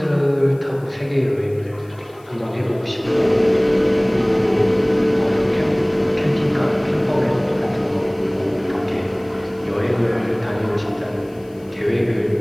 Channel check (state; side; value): noise; left; hiss, 30 dB below the sound